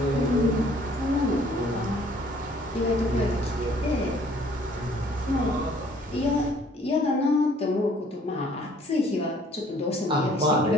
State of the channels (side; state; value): both; normal; correlation 0.58